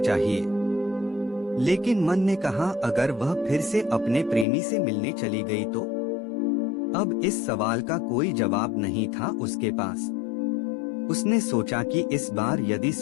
लेकिन मन ने कहा, अगर वह फिर से अपने प्रेमी से मिलने चली गई तो? अब इस सवाल का कोई जवाब नहीं था उसके पास। उसने सोचा कि इस बार यदि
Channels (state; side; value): drops out; right; at 4.5 s